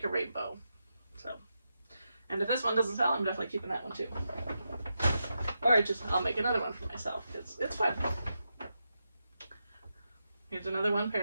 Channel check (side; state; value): both; inverted; correlation -0.87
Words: a rainbow. So, and if this one doesn't sell, I'm definitely keeping that one too. Or I'll make another one for myself. It's fun. Here's another one